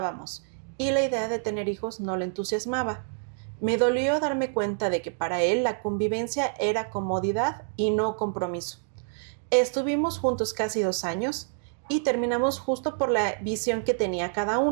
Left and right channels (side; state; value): left; silent; digital silence